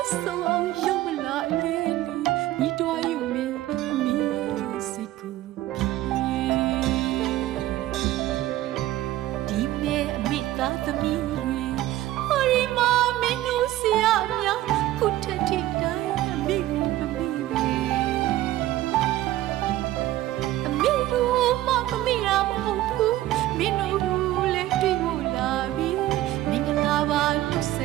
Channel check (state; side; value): quieter; left; 15.0 dB